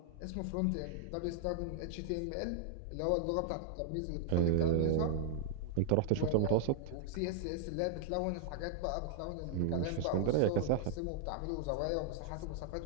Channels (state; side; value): different; both; correlation -0.01